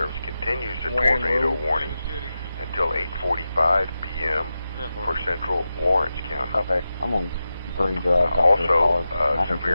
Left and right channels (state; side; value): inverted; both; correlation -0.92